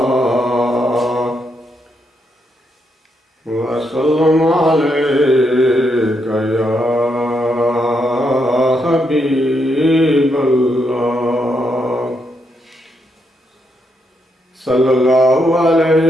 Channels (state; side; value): normal; both; correlation 0.79